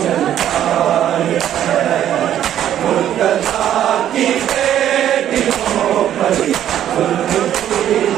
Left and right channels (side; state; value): left; quieter; 11.0 dB